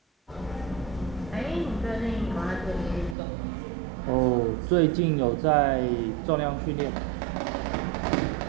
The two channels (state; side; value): drops out; left; at 3.2 s